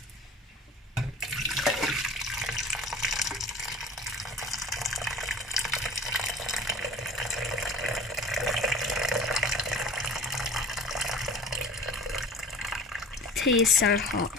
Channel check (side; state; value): both; normal; correlation 0.40